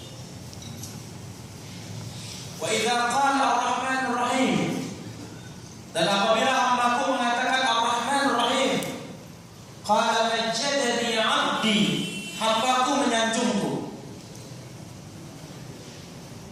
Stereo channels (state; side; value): identical; both; correlation 1.00